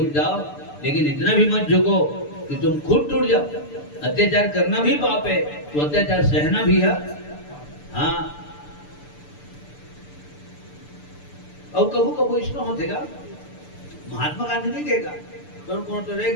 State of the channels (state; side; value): late; right; 6.8 ms